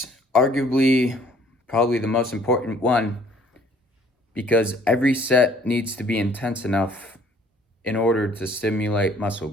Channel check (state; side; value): normal; both; correlation 0.59